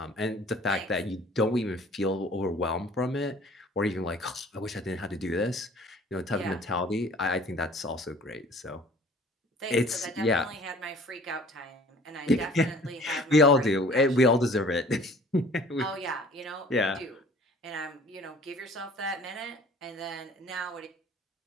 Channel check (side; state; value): both; normal; correlation 0.51